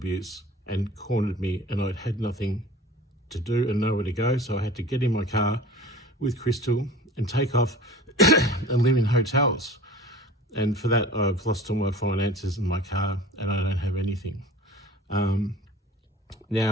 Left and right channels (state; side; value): normal; both; correlation 0.41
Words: and cornered me, and I'd had nothing to do and nowhere to go, so I had to get in my car with Crystal and take off and live in hotels. And for that, I've lost all my finances in my car, and I don't have anything. While